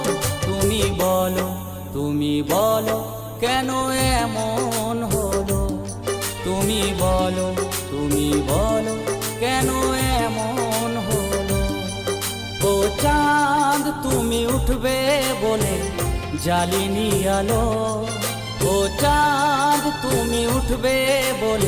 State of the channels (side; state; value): both; identical; correlation 1.00